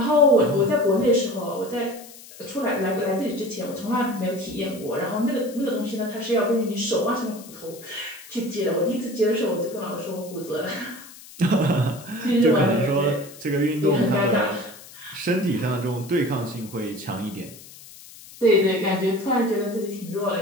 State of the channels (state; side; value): noise; left; hiss, 19 dB below the sound